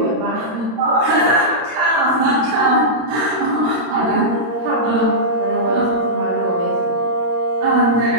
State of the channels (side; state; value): left; late; 26 ms